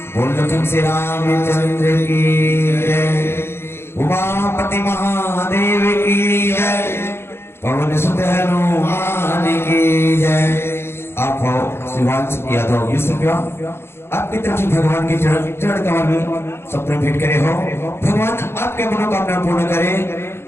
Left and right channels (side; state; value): right; late; 0.12 ms